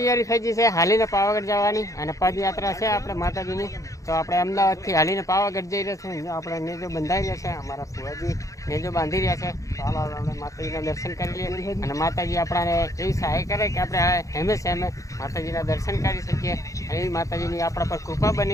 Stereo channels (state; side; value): late; right; 0.16 ms